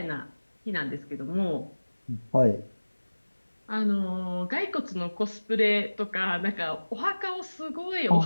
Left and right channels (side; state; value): both; inverted; correlation -1.00